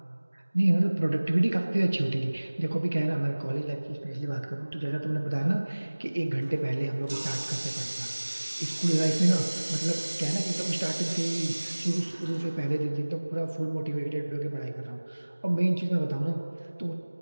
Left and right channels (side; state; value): both; inverted; correlation -1.00